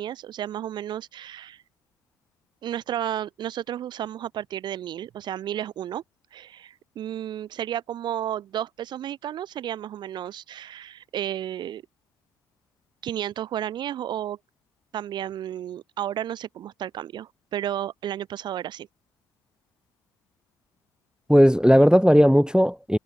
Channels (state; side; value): normal; both; correlation 0.87